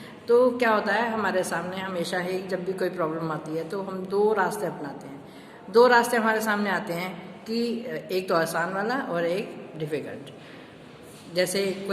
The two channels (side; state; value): both; identical; correlation 1.00